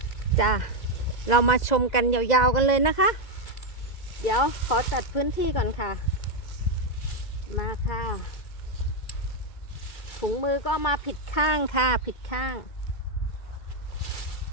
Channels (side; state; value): right; late; 2.0 ms